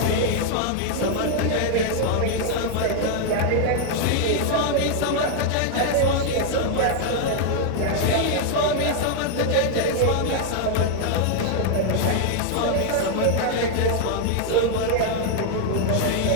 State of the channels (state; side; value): different; both; correlation 0.00